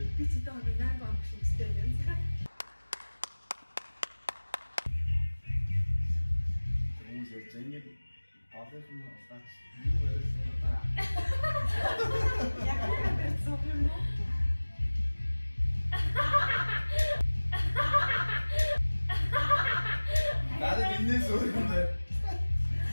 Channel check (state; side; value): inverted; both; correlation -1.00